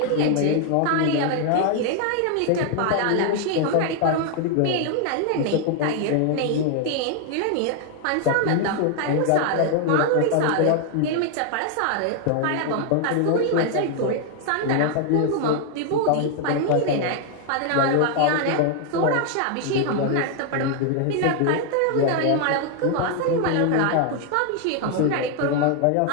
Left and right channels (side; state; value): both; different; correlation 0.00